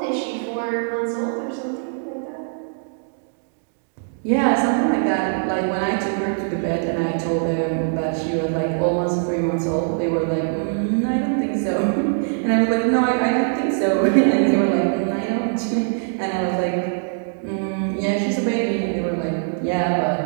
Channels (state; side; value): silent; left; digital silence